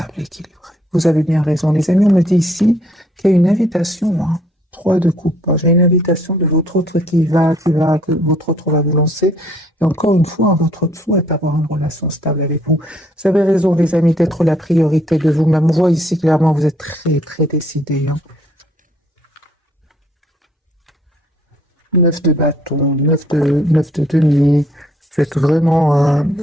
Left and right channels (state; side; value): normal; both; correlation 0.64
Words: équilibrée. Vous avez bien raison, les amis. On me dit ici qu'il y a une invitation, 3 de coupe. J'ai une invitation de votre autre que votre autre va vous lancer. Et encore une fois, votre autre souhaite avoir une relation stable avec vous. Vous avez raison, les amis, d'être la priorité de vous-même. On voit ici clairement, vous êtes très, très décidés. 9 de bâton, 9 de denier. Vous êtes vraiment